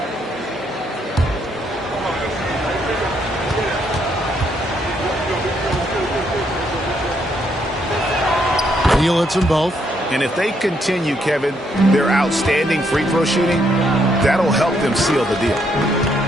Neal hits them both. And if they continue, Kevin, their outstanding free throw shooting, that'll help them seal the deal.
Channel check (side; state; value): both; normal; correlation 0.74